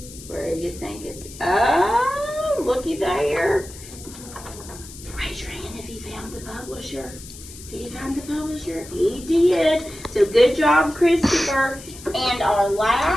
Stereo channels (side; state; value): left; noise; hiss, 16 dB below the sound